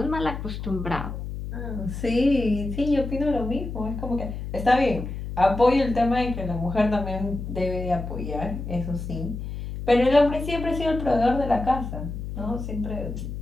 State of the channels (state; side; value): noise; left; hum, 7 dB below the sound